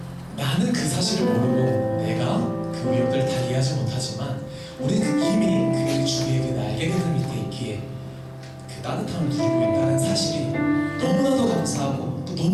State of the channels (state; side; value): identical; both; correlation 1.00